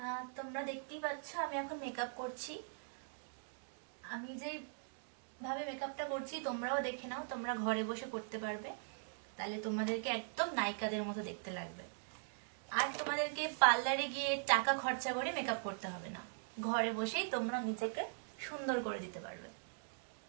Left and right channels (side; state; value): left; silent; digital silence